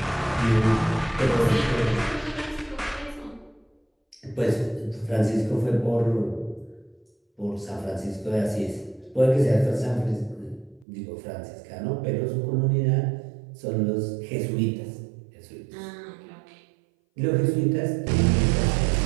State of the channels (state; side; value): drops out; left; at 10.9 s